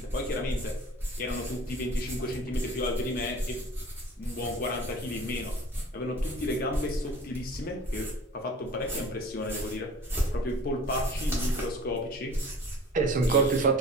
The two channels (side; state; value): both; normal; correlation 0.44